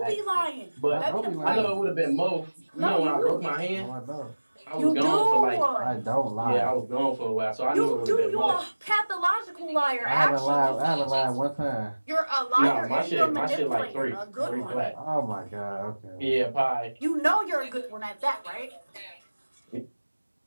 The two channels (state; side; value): inverted; both; correlation -1.00